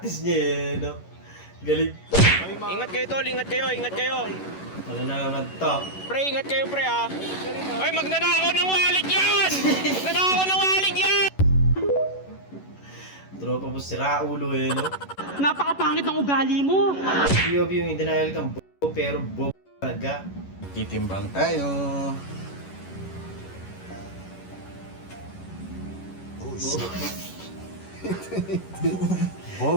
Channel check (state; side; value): late; right; 11 ms